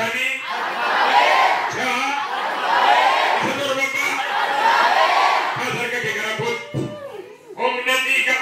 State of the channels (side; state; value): both; identical; correlation 1.00